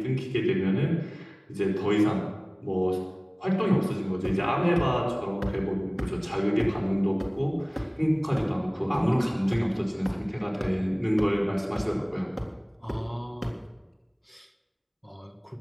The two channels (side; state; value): both; identical; correlation 1.00